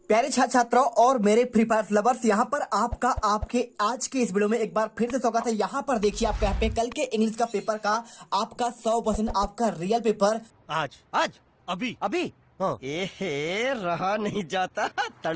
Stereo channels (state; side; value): identical; both; correlation 1.00